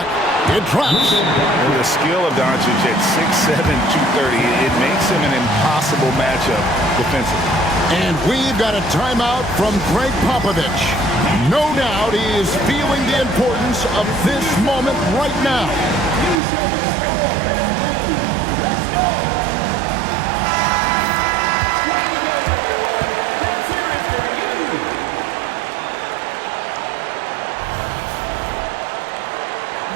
It drops. And the skill of Doncic at 6'7", 230, it makes him an impossible matchup defensively. And we've got a timeout from Greg Popovich. No doubt he is feeling the importance of this moment right now. You show the score and move. Let's go. Way to go, everyone. Let's hear it for you.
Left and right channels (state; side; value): drops out; left; at 16.4 s